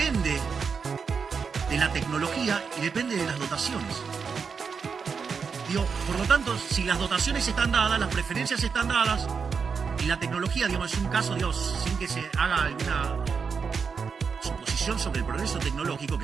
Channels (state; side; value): quieter; left; 5.8 dB